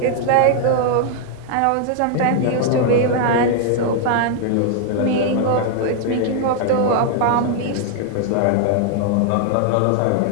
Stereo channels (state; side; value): different; both; correlation 0.00